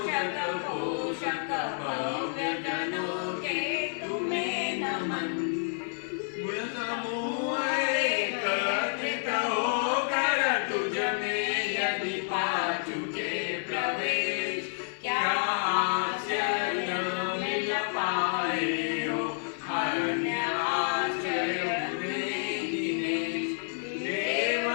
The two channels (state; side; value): silent; right; digital silence